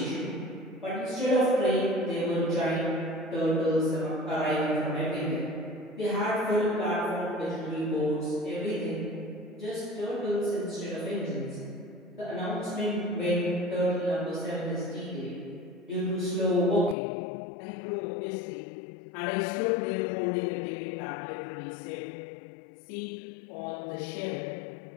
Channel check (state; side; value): drops out; right; at 16.9 s